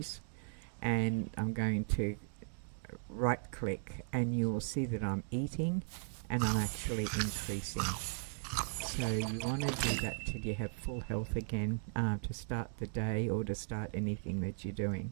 and I'm going to right click, and you'll see that I'm eating and I'm actually increasing. So you want to do that till you have full health again, to start the day or to start anything that you're doing.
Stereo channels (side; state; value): left; silent; 53 dB below the other